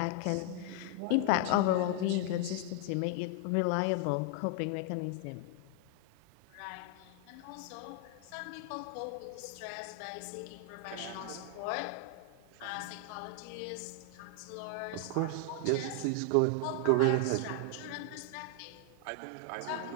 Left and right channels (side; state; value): both; different; correlation 0.00